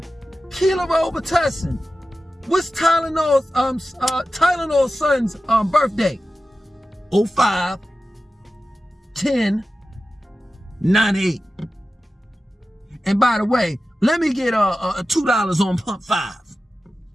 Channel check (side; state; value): both; normal; correlation 0.94